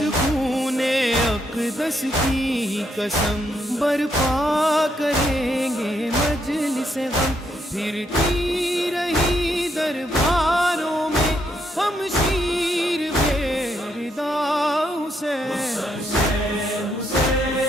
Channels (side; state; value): both; normal; correlation 0.77